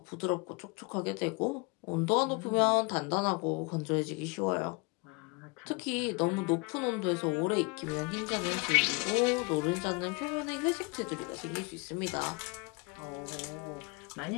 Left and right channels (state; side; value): quieter; right; 29.5 dB